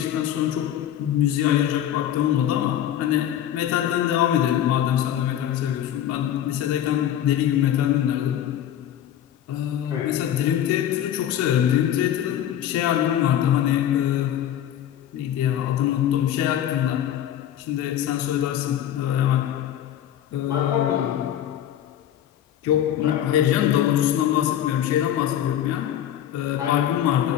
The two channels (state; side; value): quieter; right; 10.9 dB